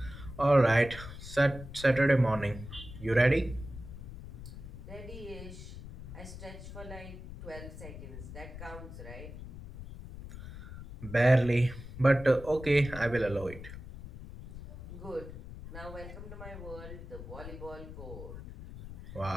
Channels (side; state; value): left; noise; rumble, 12 dB below the sound